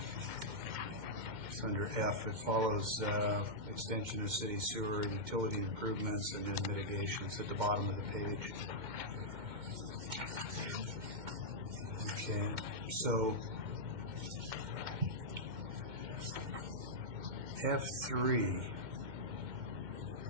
under F. It follows extension of city sewer, utility improvements, and then mitigations at the bottom of the page. Okay, so F3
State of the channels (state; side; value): late; left; 2.1 ms